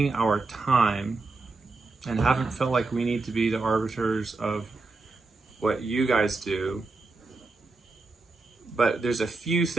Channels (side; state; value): left; quieter; 3.6 dB